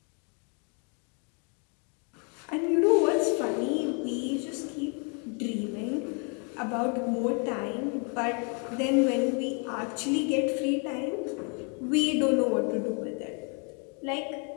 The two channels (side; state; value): right; quieter; 37.9 dB